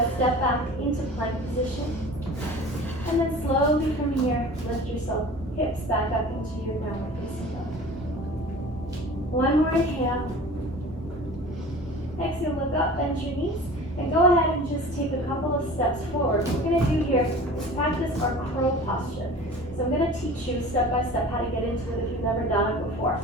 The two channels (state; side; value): normal; both; correlation 0.40